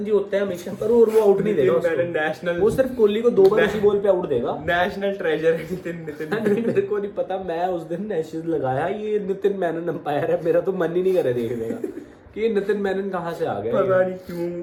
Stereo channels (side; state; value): both; identical; correlation 1.00